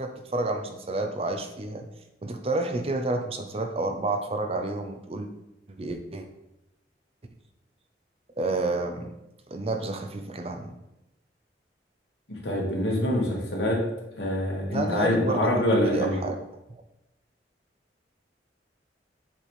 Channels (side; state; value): both; normal; correlation 0.40